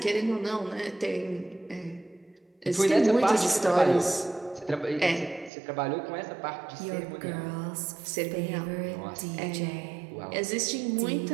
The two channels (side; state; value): left; drops out; at 5.5 s